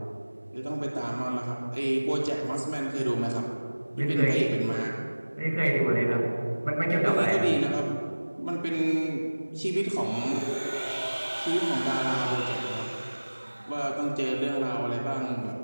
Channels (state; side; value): inverted; both; correlation -1.00